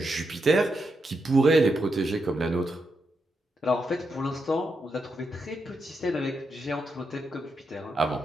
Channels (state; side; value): normal; both; correlation 0.84